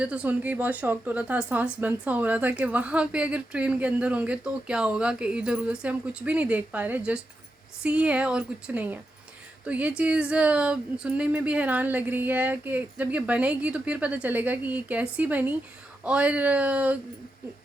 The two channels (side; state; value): both; normal; correlation 0.87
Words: तो सुन के ही बहुत शॉक्ड हो रहा था, सांस बंद सा हो रहा था कि वहाँ पे अगर ट्रेन के अंदर होंगे तो क्या होगा कि इधर उधर से हम कुछ भी नहीं देख पा रहे, जस्ट सी है और कुछ नहीं है। तो ये चीज़ सुनने में भी हैरान लग रही है कि जब ये बनेगी तो फिर पता चलेगा कि ये कैसी बनी और